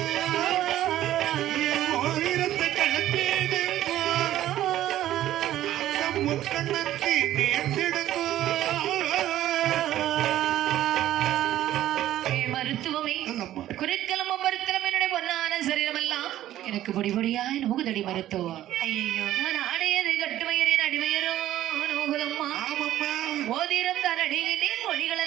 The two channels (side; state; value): left; quieter; 13.3 dB